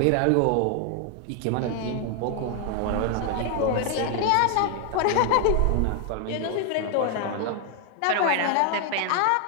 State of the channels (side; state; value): both; different; correlation 0.00